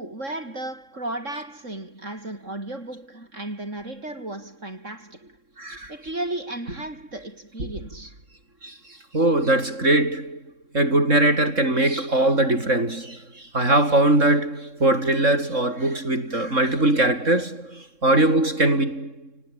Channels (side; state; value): left; late; 3.7 ms